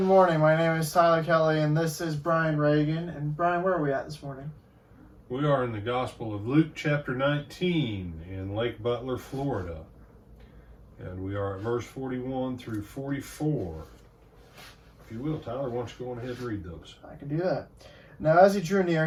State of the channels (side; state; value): both; identical; correlation 1.00